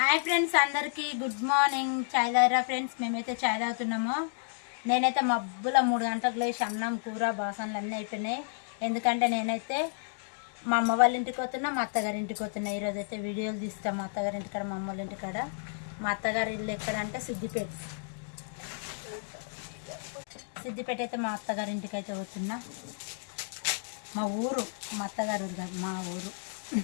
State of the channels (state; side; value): silent; right; digital silence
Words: Hi friends, అందరికీ good morning. చాయ్ తాగిరా friends? మేమైతే చాయ్ తాగుతున్నాము. నేనైతే మబ్బుల 3 గంటలకు లేచి అన్నం కూర బాసనలు అన్నీ అయిపోయినాయి. ఎందుకంటే నేనైతే మా అమ్మ వాళ్ళ ఇంటికి పోతున్నా, మా అత్తగారి ఇంటికి పోతున్నా. ఈరోజు అయితే వీడియోలు తీస్తాం మా అత్తగారి ఇంటికాడ, మా అమ్మ వాళ్ళ ఇంటికాడ. మా అత్తగారి ఇల్లు ఎక్కడంటే సిద్దిపేట. సిద్దిపేట అయితే మా అత్తగారి ఇంటికి అయితే పోతున్నా. మా ఊరు, మా అత్తగారి ఊరు కాదు, మా ఊరు